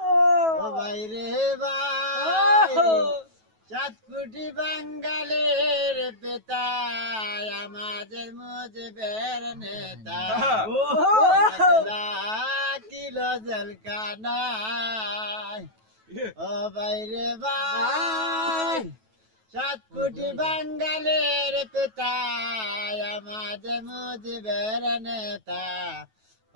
ও ভাই রে ভাই, 7 কোটি বাঙালির পিতা, আমাদের মুজিবের নেতা, কিলো জলকানায়। ও ভাই রে ভাই, 7 কোটি বাঙালির পিতা, আমাদের মুজিবের নেতা,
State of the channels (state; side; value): late; left; 9.2 ms